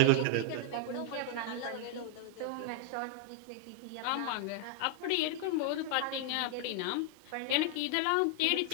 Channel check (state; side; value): different; both; correlation 0.00